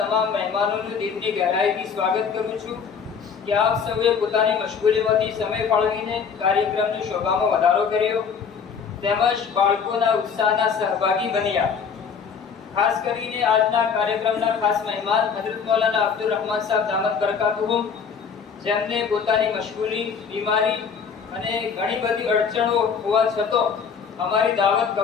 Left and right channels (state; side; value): quieter; right; 6.3 dB